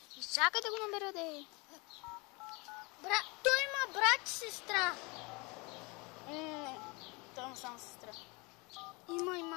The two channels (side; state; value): right; quieter; 27.7 dB